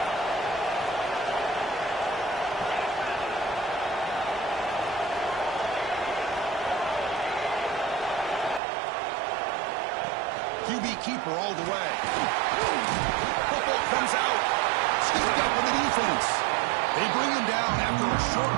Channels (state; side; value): drops out; left; at 8.6 s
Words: QB keeper all the way. Football comes out. Scooped up in the defense. They bring him down after a short